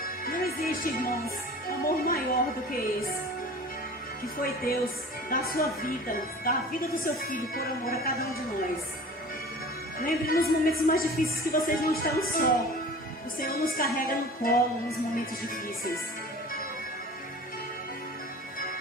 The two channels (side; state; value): both; normal; correlation 0.41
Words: Não existe, irmãos, amor maior do que esse, que foi Deus da sua vida, da vida do seu filho, por amor a cada um de nós. Lembre nos momentos mais difíceis que vocês não estão só. O Senhor nos carrega no colo nos momentos difíceis.